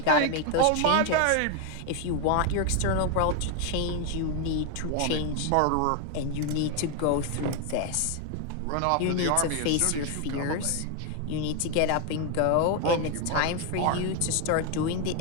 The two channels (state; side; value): different; both; correlation 0.01